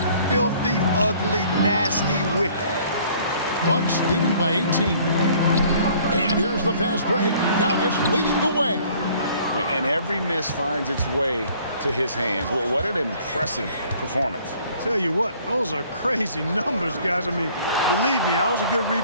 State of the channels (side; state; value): both; inverted; correlation -0.56